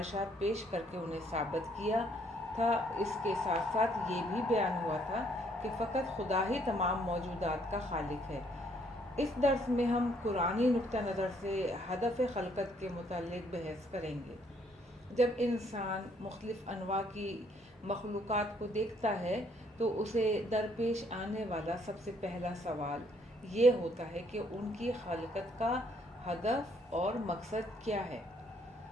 پیش کر کے انہیں ثابت کیا تھا۔ اس کے ساتھ ساتھ یہ بھی بیان ہوا تھا کہ فقط خدا ہی تمام موجودات کا خالق ہے۔ اس درس میں ہم قرآنی نقطہ نظر سے ہدف خلقت کے متعلق بحث کریں گے۔ جب انسان مختلف انواع کی مخلوقات کو دیکھتا ہے تو اسے درپیش آنے والا سب سے پہلا سوال یہ ہوتا ہے کہ ان کی خلقت کا ہدف اور مقصد کیا ہے۔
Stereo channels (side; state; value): both; normal; correlation 0.67